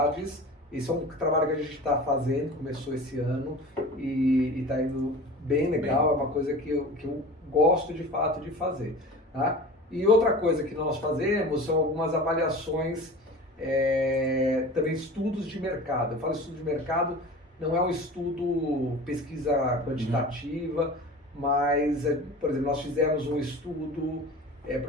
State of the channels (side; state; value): both; normal; correlation 0.37